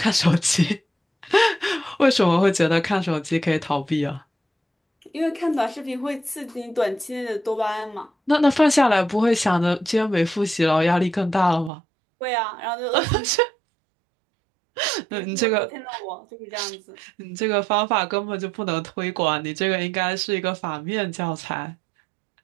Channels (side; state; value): left; drops out; at 11.7 s